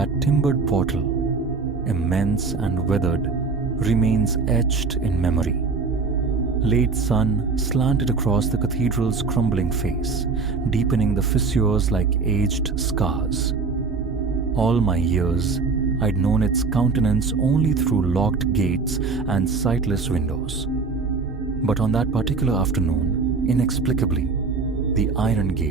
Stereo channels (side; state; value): left; quieter; 4.5 dB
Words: timbered portal, immense and weathered, remains etched in memory. Late sun slanted across the cathedral's crumbling face, deepening the fissures like aged scars. All my years, I'd known its countenance only through locked gates and sightless windows. But on that particular afternoon, inexplicably, the iron